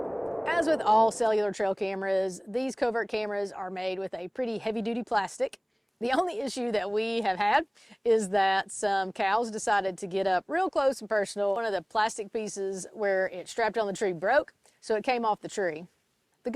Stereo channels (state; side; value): identical; both; correlation 1.00